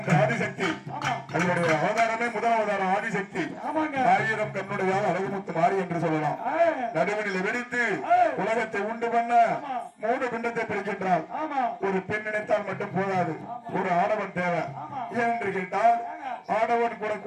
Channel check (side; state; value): both; identical; correlation 1.00